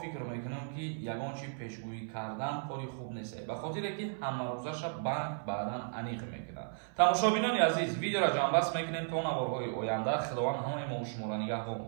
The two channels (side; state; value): left; silent; 55 dB below the other